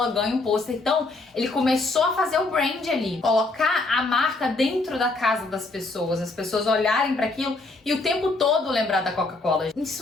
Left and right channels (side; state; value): right; quieter; 3.2 dB